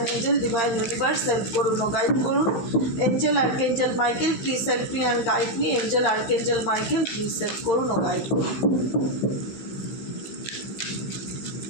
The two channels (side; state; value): right; late; 16 ms